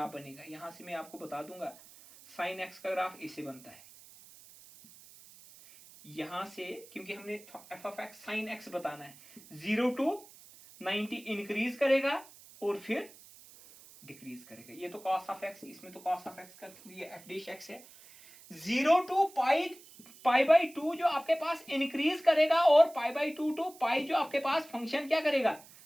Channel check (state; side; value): noise; right; hiss, 21 dB below the sound